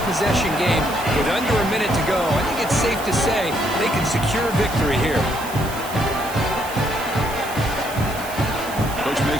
game with under a minute to go. I think it's safe to say they can secure victory here. Coach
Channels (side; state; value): right; noise; hiss, 13 dB below the sound